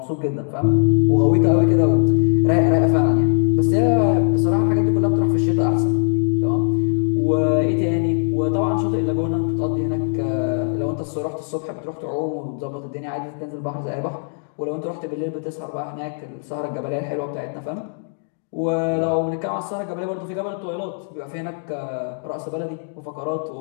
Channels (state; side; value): silent; right; digital silence